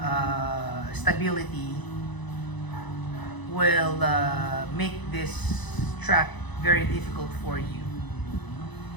stability will make this track very difficult for you.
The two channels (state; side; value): late; right; 1.0 ms